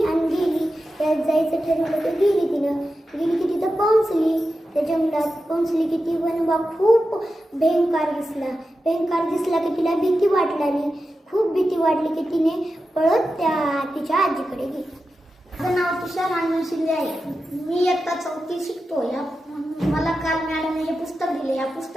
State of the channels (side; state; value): both; normal; correlation 0.91